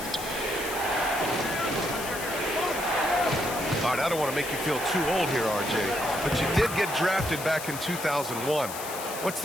All right, I don't want to make you feel too old here, RJ, but you did get drafted back in 2001. What's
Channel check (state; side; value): noise; left; hiss, 9 dB below the sound